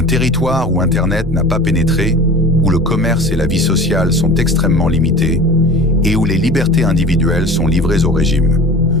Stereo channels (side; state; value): both; normal; correlation 0.39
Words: territoire où Internet n'a pas pénétré, où le commerce et la vie sociale sont extrêmement limités et où les libertés individuelles sont livrées au régime.